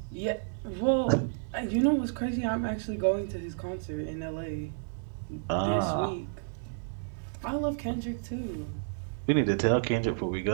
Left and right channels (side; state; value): left; silent; digital silence